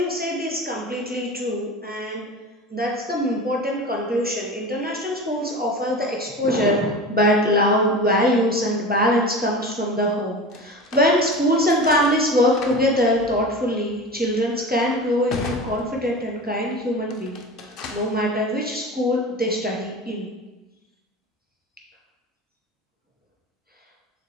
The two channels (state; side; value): normal; both; correlation 0.32